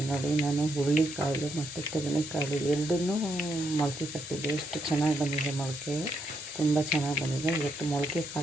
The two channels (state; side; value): normal; both; correlation 0.78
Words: ನೋಡಿ, ನಾನು ಹುರುಳಿಕಾಳು ಮತ್ತು ತೆಂಗಿನಕಾಳು ಎರಡನ್ನೂ ಮೊಳಕೆ ಕಟ್ಟಿದ್ದೆ. ಎಷ್ಟು ಚೆನ್ನಾಗಿ ಬಂದಿದೆ ಮೊಳಕೆ, ತುಂಬ ಚೆನ್ನಾಗಿ ಬಂದಿದೆ. ಇವತ್ತು ಮೊಳಕೆ